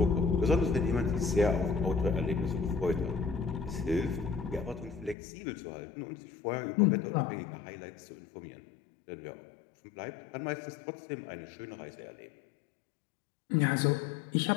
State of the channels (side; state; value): right; drops out; at 5.2 s